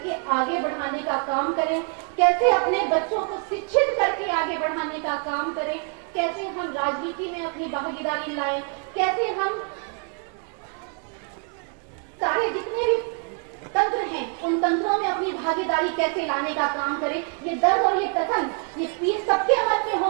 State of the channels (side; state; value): left; quieter; 39.3 dB